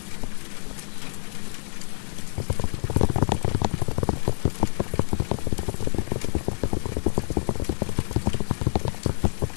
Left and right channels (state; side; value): silent; right; 61 dB below the other